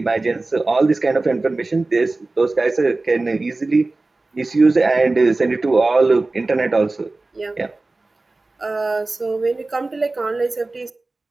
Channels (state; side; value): quieter; left; 3.2 dB